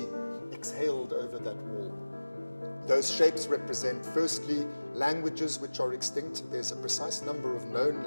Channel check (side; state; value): both; inverted; correlation -1.00